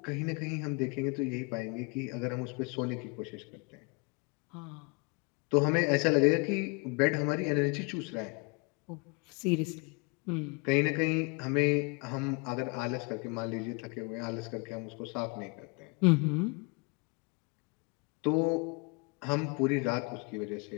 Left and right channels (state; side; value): quieter; right; 31.4 dB